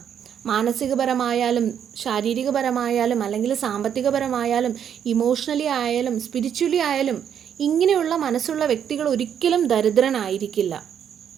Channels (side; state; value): left; quieter; 8.7 dB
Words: മാനസികപരമായാലും ശാരീരികപരമായാലും അല്ലെങ്കിൽ സാമ്പത്തികപരമായാലും ഇമോഷണലി ആയാലും സ്പിരിച്വലി ആയാലും ഇങ്ങനെയുള്ള മനസ്സുള്ള വ്യക്തികൾ ഒരിക്കലും ദരിദ്രനായിരിക്കില്ല.